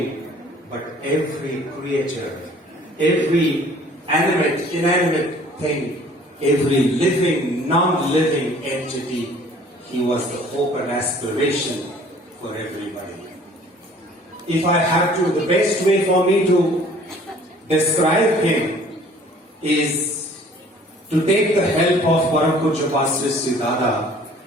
but every creature, every animate, inanimate thing, every living, non-living entity. He was the hope and aspiration for everybody. If I have to, the best way for me to describe him is to take the help of Param Pujya Sree Sree Dada,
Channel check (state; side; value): normal; both; correlation 0.53